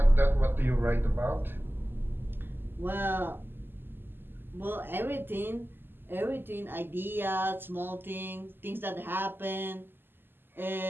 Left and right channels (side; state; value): left; late; 0.098 ms